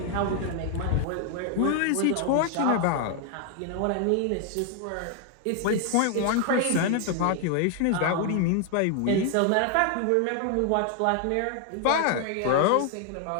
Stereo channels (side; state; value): both; different; correlation 0.00